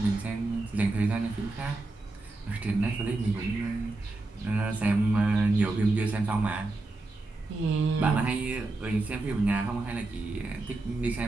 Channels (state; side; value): quieter; left; 3.1 dB